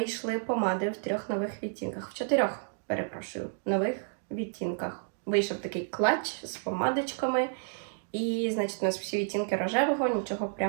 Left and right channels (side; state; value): left; silent; digital silence